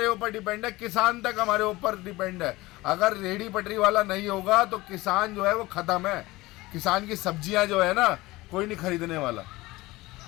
ऊपर डिपेंड है। किसान तक हमारे ऊपर डिपेंड है। अगर रेहड़ी पटरी वाला नहीं होगा तो किसान जो है वो खत्म है। किसान की सब्जियां जो है ना, कोई नहीं खरीदने वाला,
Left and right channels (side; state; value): right; quieter; 20.0 dB